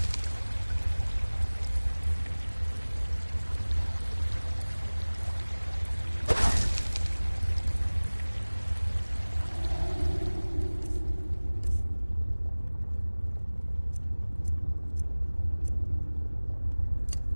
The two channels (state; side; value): inverted; both; correlation -1.00